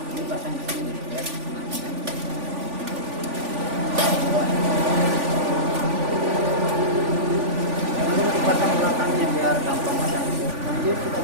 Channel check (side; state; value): left; late; 3.5 ms